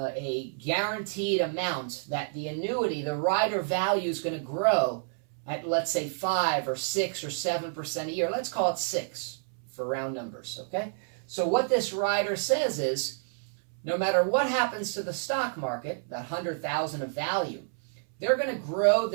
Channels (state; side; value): silent; left; 58 dB below the other